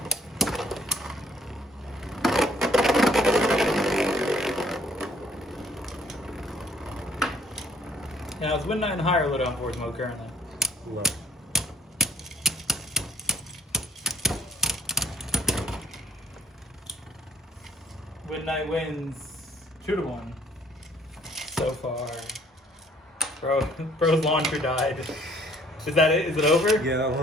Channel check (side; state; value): both; normal; correlation 0.62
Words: Now, is Wind Knight in higher low down force mode currently? Low. Wind Knight wins 2-1 so far. Bro's launcher died. Is that it? Is it over? Yeah, that